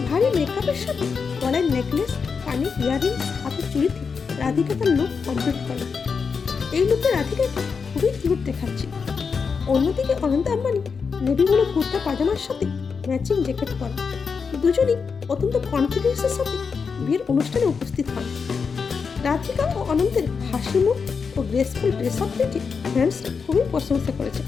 ভারী মেকআপের সাথে গলায় নেকলেস, কানে ইয়াররিংস, হাতে চুড়িতে রাধিকা তার লুক কমপ্লিট করেন। এই লুকে রাধিকাকে খুবই কিউট দেখাচ্ছে। অন্যদিকে অনন্ত আম্বানি নেভি ব্লু কুর্তা পাজামার সাথে ম্যাচিং জ্যাকেট পরেন। দুজনেই অত্যন্ত কনফিডেন্সের সাথে বিয়ের অনুষ্ঠানে উপস্থিত হন। রাধিকা ও অনন্তের হাসি মুখ ও গ্রেসফুল ড্রেস আপ দেখে ফ্রেন্ডসরা খুবই প্রশংসা করেছে।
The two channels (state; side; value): quieter; right; 5.6 dB